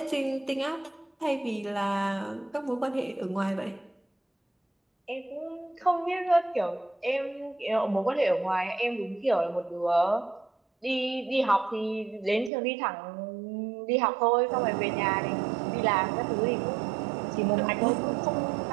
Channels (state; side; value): drops out; left; at 12.5 s